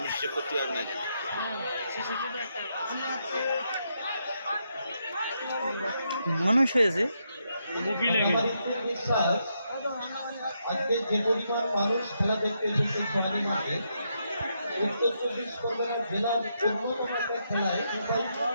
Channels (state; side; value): inverted; both; correlation -0.80